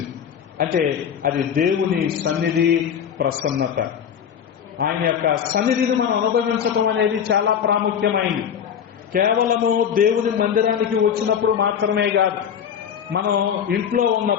అంటే అది దేవుని సన్నిధి, ప్రసన్నత. ఆయన యొక్క సన్నిధిని మనం అనుభవించడం అనేది చాలా ప్రాముఖ్యమైంది. కేవలము దేవుని మందిరానికి వచ్చినప్పుడు మాత్రమే కాదు, మనం ఇంట్లో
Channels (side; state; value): right; quieter; 8.2 dB